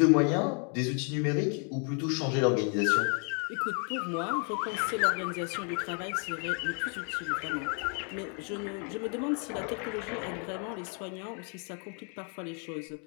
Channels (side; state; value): right; quieter; 39.5 dB